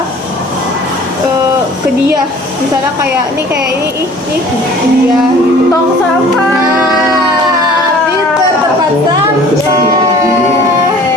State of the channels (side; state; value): both; normal; correlation 0.49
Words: ke dia, misalnya kayak ini ke dia gitu. Tong sampah. Pinter, tepat sampai.